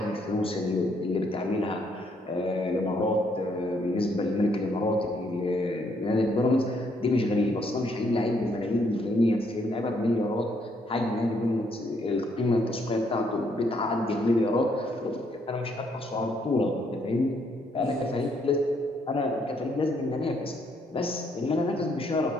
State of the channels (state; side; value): normal; both; correlation 0.71